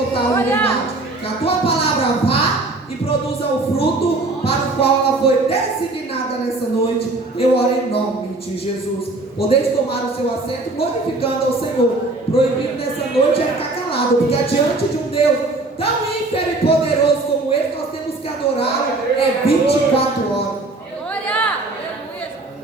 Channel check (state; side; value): quieter; left; 3.0 dB